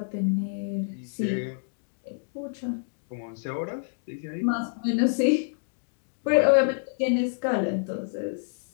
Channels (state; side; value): silent; right; digital silence